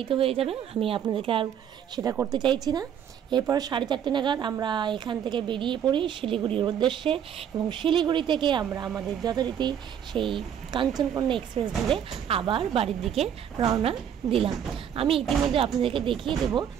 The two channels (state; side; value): quieter; left; 9.0 dB